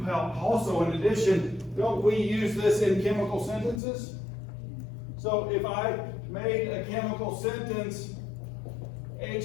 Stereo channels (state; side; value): drops out; right; at 3.8 s